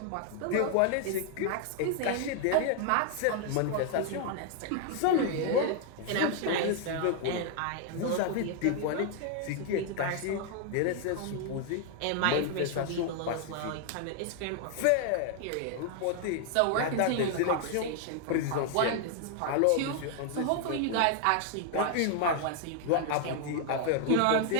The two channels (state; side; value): different; both; correlation 0.00